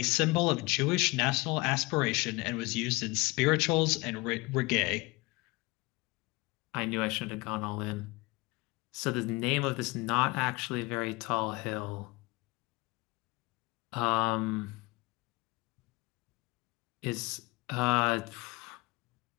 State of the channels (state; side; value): quieter; right; 23.8 dB